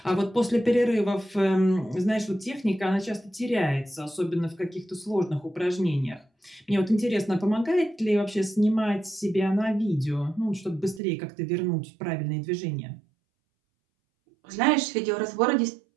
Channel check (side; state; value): left; drops out; at 11.0 s